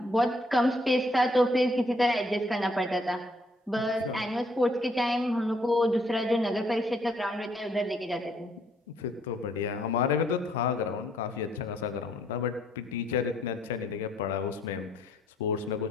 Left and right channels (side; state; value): both; normal; correlation 0.68